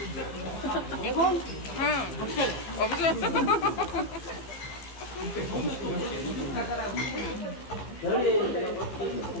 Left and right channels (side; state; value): right; late; 15 ms